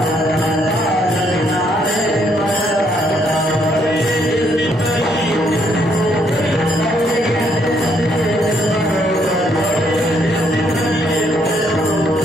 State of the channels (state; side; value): normal; both; correlation 0.71